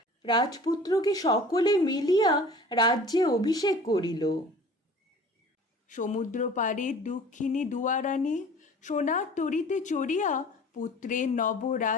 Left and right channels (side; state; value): both; normal; correlation 0.45